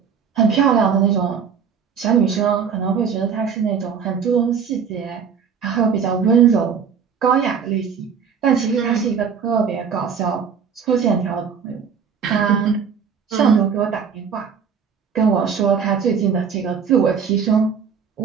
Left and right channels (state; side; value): quieter; left; 6.7 dB